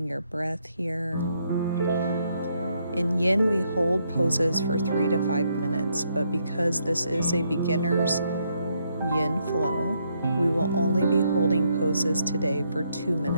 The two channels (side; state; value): both; inverted; correlation -0.75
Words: your breath here. In yin, we hold poses for 3 to 5 minutes, but because this is a beginner's yin flow, we will only be holding poses today for 2